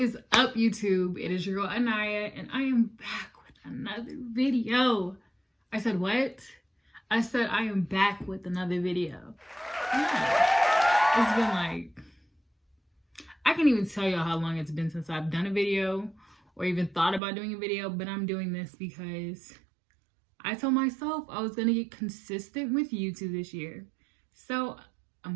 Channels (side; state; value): left; drops out; at 17.2 s